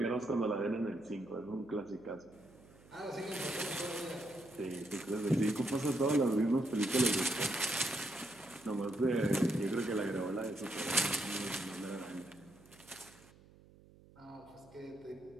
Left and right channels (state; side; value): noise; right; hum, 24 dB below the sound